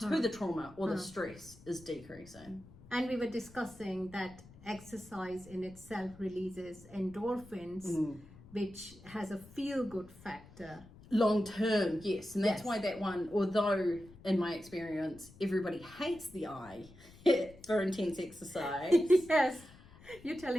the trauma or the stress is decreasing. And we were discussing that exercise in itself releases endorphins, which has a feel-good factor. Long term, yes. And that's why that one, although in my experience, everybody hates the I for intense exercise. Yes, you're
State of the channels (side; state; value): left; noise; rumble, 21 dB below the sound